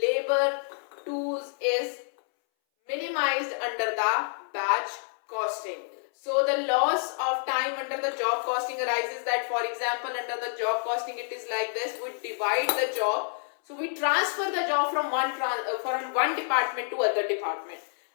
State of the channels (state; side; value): silent; right; 59 dB below the other